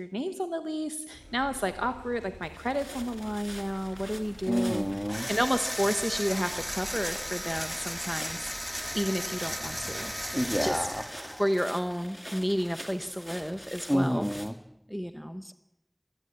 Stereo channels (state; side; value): identical; both; correlation 1.00